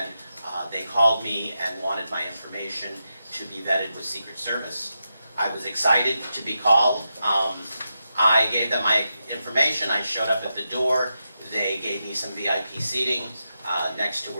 They called me and wanted my information to be vetted with Secret Service. I was excited to be called. I gave them my information. I showed up at the door. They gave me some VIP seating next to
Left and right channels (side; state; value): both; inverted; correlation -0.88